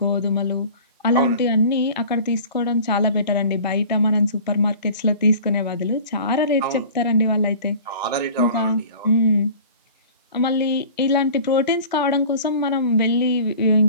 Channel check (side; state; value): both; inverted; correlation -0.43